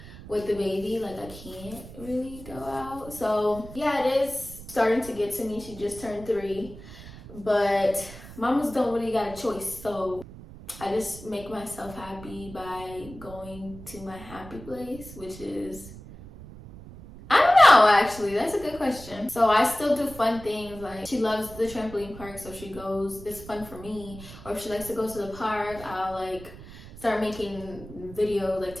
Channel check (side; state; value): right; noise; rumble, 16 dB below the sound